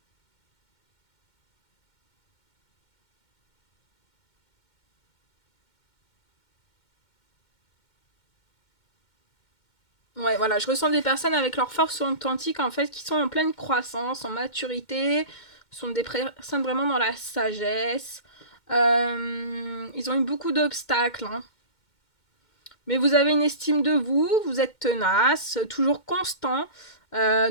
Ouais, voilà, je ressens des personnes avec leur force authentique, en fait, qui sont en pleine croissance, en maturité, sont des personnes vraiment dans la sagesse. Ils ont eu beaucoup d'obstacles, hein. Mais vous avez une estime de vous, vous êtes tenace, toujours constant,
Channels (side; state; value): right; late; 2.1 ms